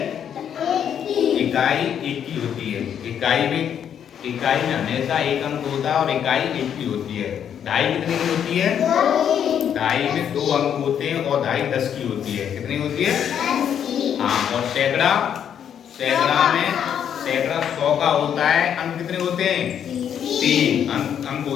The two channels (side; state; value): right; quieter; 8.8 dB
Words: इकाई एक की होती है। इकाई में हमेशा एक अंक होता है और इकाई एक की होती है। ढाई कितने की होती है? ढाई में 2 अंक होते हैं और ढाई 10 की होती है। कितनी होती है? हाँ। और सैकड़ा में सैकड़ा 100 का होता है। अंक कितने होते हैं? 3 अंक